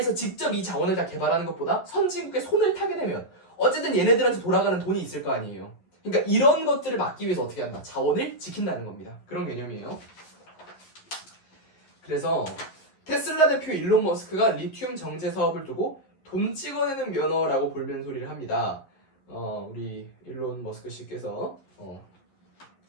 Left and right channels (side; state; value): right; late; 11 ms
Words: 직접 이 자원을 다 개발하는 것보다 선진국의 손을 타게 되면 어쨌든 얘네들한테 돌아가는 돈이 있을 거 아니에요. 그러니까 이런 것들을 막기 위해서 어떻게 한다? 자원을 지킨다는 겁니다. 그런 개념이에요. 그래서 테슬라 대표 일론 머스크가 리튬 정제 사업을 두고 돈 찍어내는 면허라고 볼면 소리를 합니다. 우리 일론 머스크 씨께서